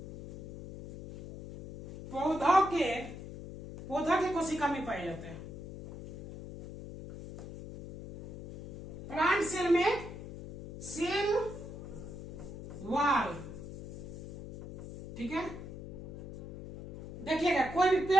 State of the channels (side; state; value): left; noise; hum, 12 dB below the sound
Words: पौधा के कोशिका में पाए जाते हैं। प्लांट सेल में सेल वॉल। ठीक है, देखिएगा, कोई भी